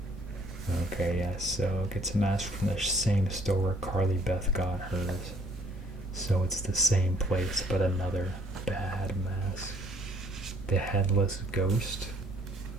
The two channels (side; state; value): both; normal; correlation 0.61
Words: Okay, yes, so gets a mask from the same store where Carly Beth got hers. So it's the same place, but another bad mask. The Headless Ghost.